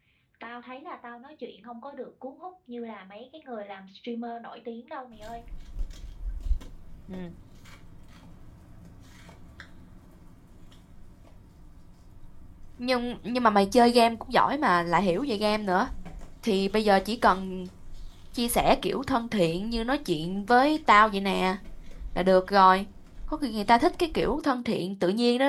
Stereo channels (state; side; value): identical; both; correlation 1.00